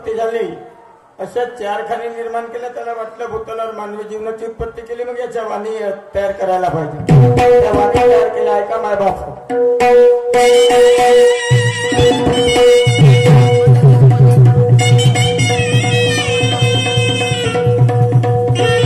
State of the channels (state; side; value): identical; both; correlation 1.00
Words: झाली. अशा 4 खाणी निर्माण केल्या. त्याला वाटलं भूतलावर मानवी जीवनाची उत्पत्ती केली, मग याच्या वाणी तयार करायला पाहिजे. त्या वाणी तयार केल्या. ऐका माय बाप,